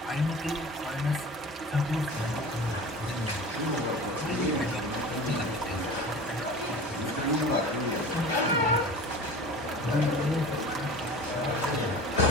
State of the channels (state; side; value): normal; both; correlation 0.37